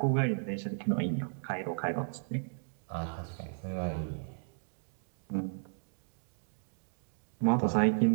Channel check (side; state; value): left; silent; digital silence